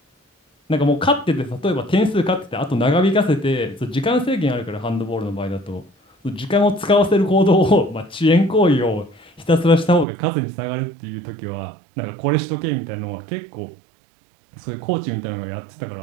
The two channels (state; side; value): drops out; left; at 10.1 s